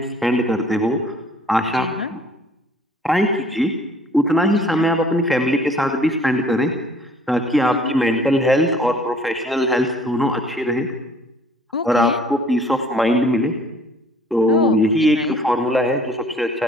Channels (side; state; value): both; normal; correlation 0.55